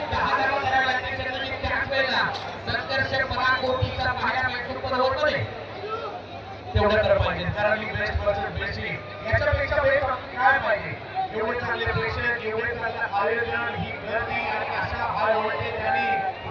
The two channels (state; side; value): identical; both; correlation 1.00